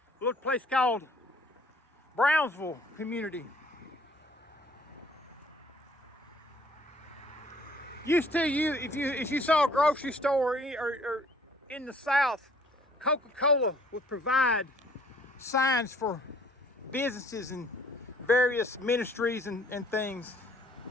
a little place called Brownsville Community. Used to, if you saw a grocery store or in the South, Coca-Cola would provide signs for businesses and various ministries and things.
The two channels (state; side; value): normal; both; correlation 0.59